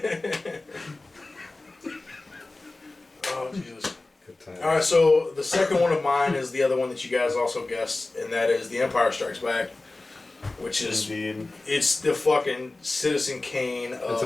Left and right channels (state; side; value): quieter; right; 3.1 dB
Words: Oh Jesus. Good time. All right, so the second one of mine is the other one that you guys also guessed, and that is The Empire Strikes Back, which is Indeed. it's the fucking Citizen Kane of It's